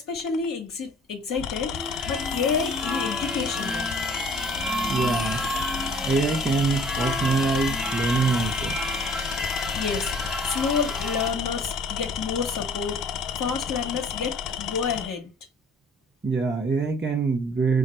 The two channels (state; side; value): normal; both; correlation 0.52